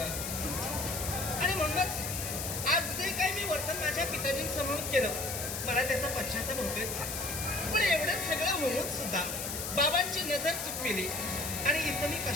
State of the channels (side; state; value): left; noise; hiss, 4 dB below the sound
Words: आहे. आणि म्हणूनच आज जे काही मी वर्तन माझ्या पिताजींसमोर केलं, मला त्याचा पश्चाताप होतोयच का. पण एवढं सगळं होऊन सुद्धा बाबांची नजर चुकविली आणि इथं मी